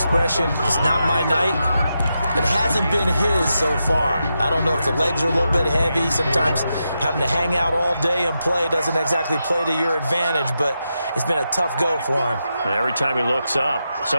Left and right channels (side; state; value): both; inverted; correlation -0.87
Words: it's not my night. It hasn't been his so far. I don't know if the legs are a little bit heavy. Sometimes having to hang out all day and play doesn't exactly play to your advantage, but it's been a tough go for him. And every time he looks up,